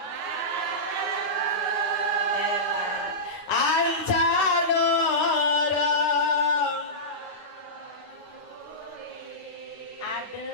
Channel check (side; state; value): right; late; 9.5 ms